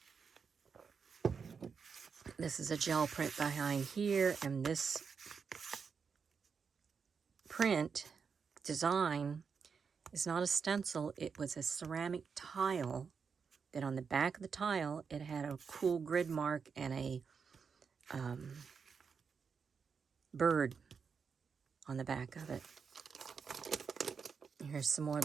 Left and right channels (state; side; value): quieter; left; 5.9 dB